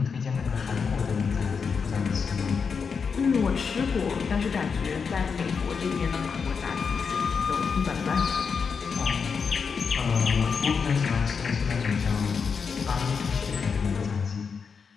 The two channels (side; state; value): right; quieter; 5.8 dB